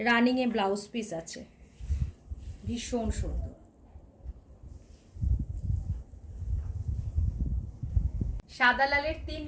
রানিংয়ে ব্লাউজ পিস আছে, ভীষণ সুন্দর। সাদা লালের 3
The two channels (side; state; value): both; identical; correlation 1.00